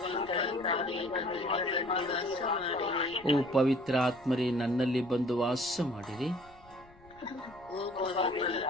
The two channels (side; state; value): left; noise; rumble, 25 dB below the sound